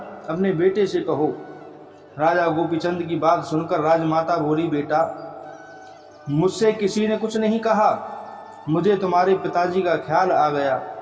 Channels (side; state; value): both; identical; correlation 1.00